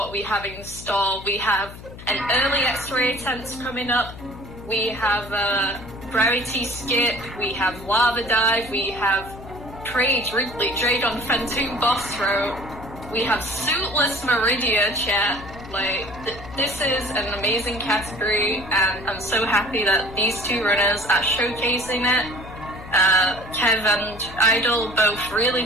we have in store. We have an early X-ray attempt coming up, we have Gravity Skip, we have Lava Dive, we have Trade Wrigley, Trade on Phantom Boss Throw, we have Suitless Meridia chat. This is an amazing category, and I'm so happy that these two runners are showcasing it. Kev and Idle, both really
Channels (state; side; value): noise; left; hum, 15 dB below the sound